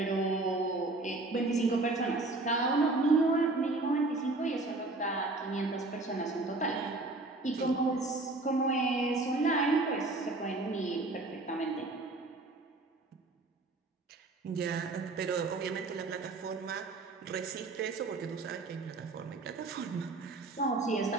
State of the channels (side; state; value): left; quieter; 3.2 dB